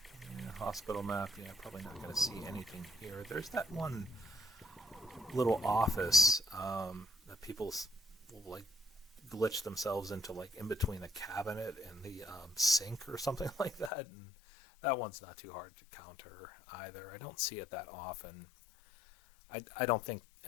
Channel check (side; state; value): right; drops out; at 13.9 s